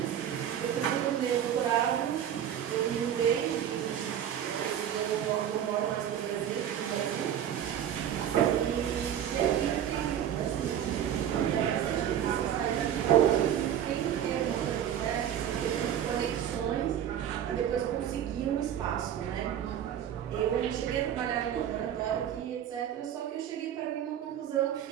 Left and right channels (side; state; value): left; quieter; 9.9 dB